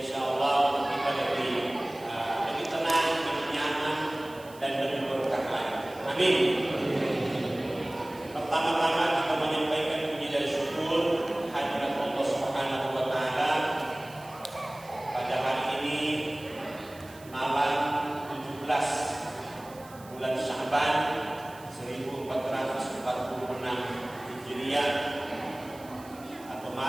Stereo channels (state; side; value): noise; right; hiss, 22 dB below the sound